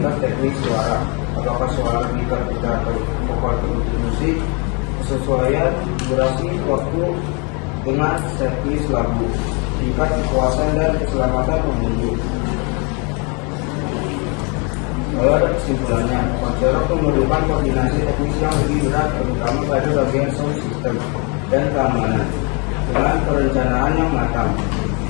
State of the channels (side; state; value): right; quieter; 33.0 dB